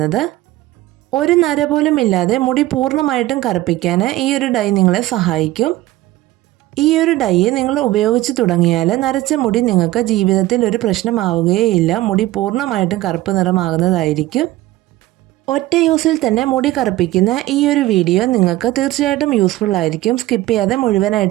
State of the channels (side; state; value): left; quieter; 16.8 dB